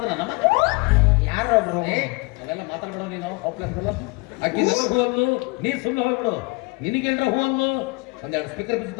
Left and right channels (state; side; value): quieter; right; 26.9 dB